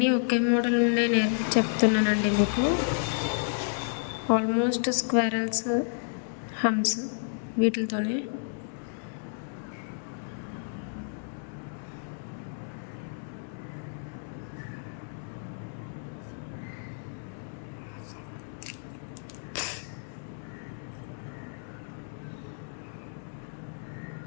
ఒకే మోడల్ నుండే చెప్తున్నానండి మీకు. ఆల్మోస్ట్ స్క్వేరల్స్, హమ్స్ వీటితోనే.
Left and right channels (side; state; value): right; silent; digital silence